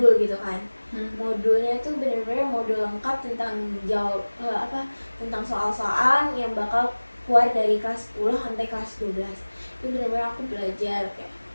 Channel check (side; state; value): both; inverted; correlation -1.00